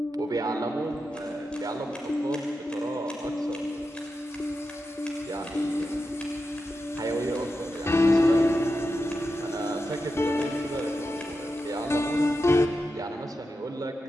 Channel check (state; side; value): normal; both; correlation 0.89